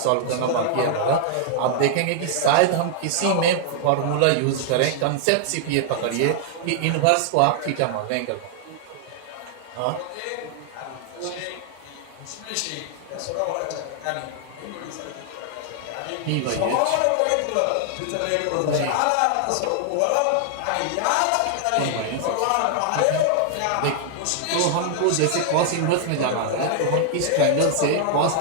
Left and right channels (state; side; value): different; both; correlation 0.00